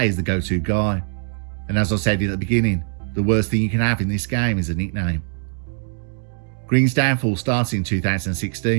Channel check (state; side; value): silent; left; digital silence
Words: he's the go-to guy. And as I said at the beginning, the worst thing you can have in this game is a nickname. Green's downfall started in